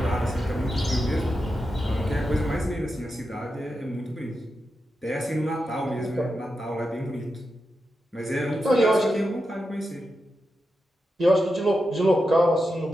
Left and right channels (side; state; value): both; normal; correlation 0.88